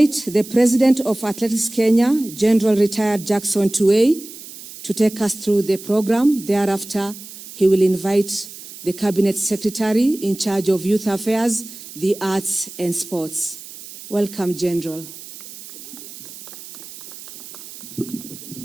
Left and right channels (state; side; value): noise; right; hiss, 15 dB below the sound